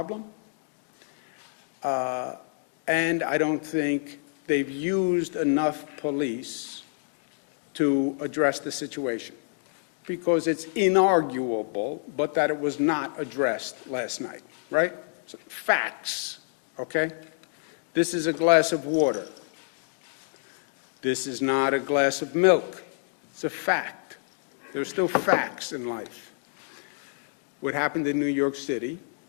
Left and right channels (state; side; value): silent; right; digital silence